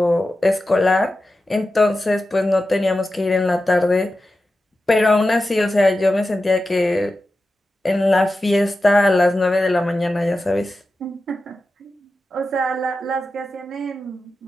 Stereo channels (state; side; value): normal; both; correlation 0.92